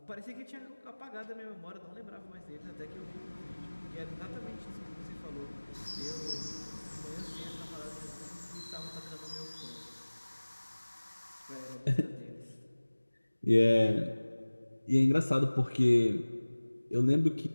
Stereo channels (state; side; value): inverted; both; correlation -1.00